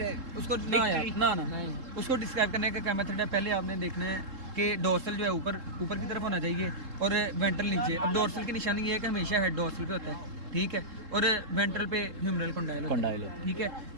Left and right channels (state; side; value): late; left; 3.7 ms